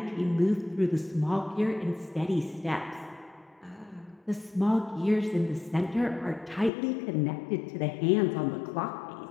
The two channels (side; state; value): right; drops out; at 6.7 s